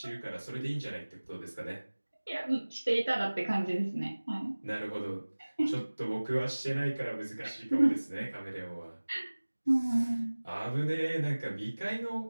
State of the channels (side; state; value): both; inverted; correlation -1.00